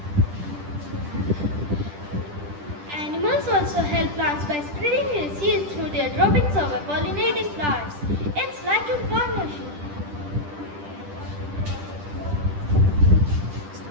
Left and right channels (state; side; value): late; left; 10 ms